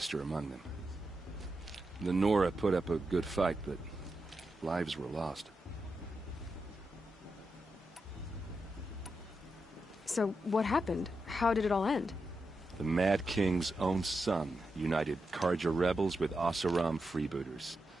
among them. The Nora put up a good fight, but lives were lost. So, what happened? How did it all end? The Mad King's own son united Carja rebels with Oseram freebooters.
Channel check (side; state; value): both; normal; correlation 0.87